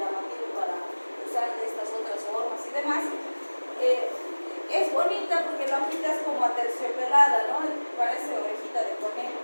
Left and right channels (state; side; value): inverted; both; correlation -1.00